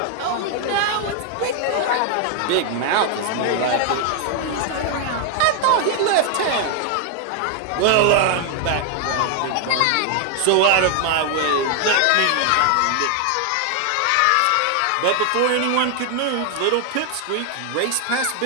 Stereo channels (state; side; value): different; both; correlation 0.00